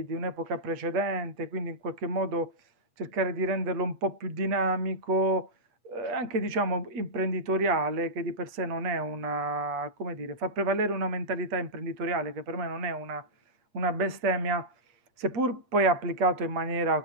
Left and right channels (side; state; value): left; late; 8.4 ms